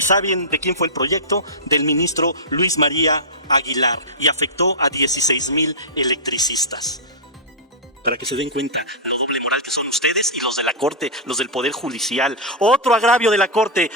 saben de quién fue el proyecto? Del ministro Luis María Aguilar, y afectó a 16,000 electricistas. Para que se den cuenta la doble moral que son ustedes y los de la Corte, los del Poder Judicial. Otro agravio de la Corte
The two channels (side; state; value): both; normal; correlation -0.12